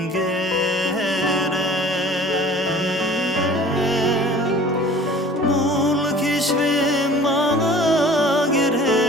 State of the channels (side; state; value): both; normal; correlation 0.47